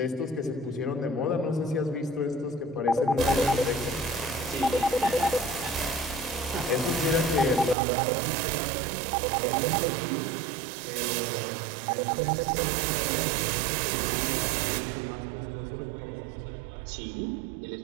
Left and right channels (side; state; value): left; drops out; at 7.8 s